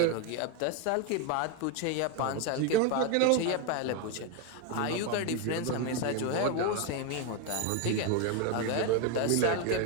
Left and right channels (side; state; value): both; different; correlation 0.02